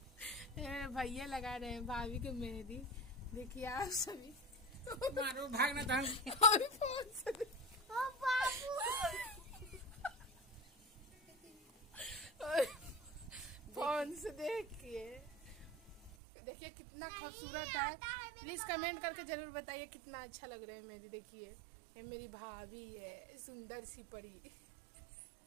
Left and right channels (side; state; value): left; drops out; at 16.1 s